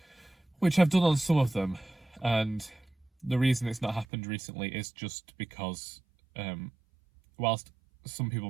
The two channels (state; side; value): drops out; left; at 4.0 s